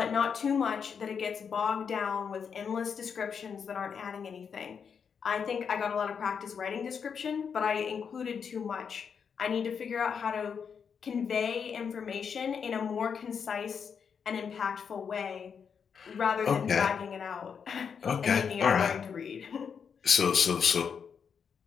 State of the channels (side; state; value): right; quieter; 6.7 dB